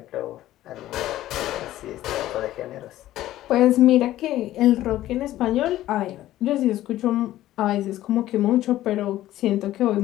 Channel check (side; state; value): right; quieter; 14.4 dB